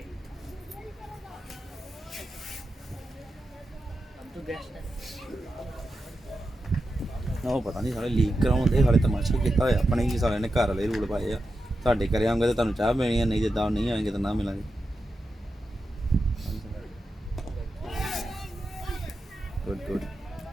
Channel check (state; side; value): normal; both; correlation 0.89